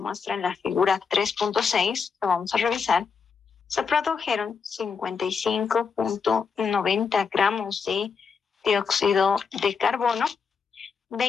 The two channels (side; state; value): right; quieter; 5.7 dB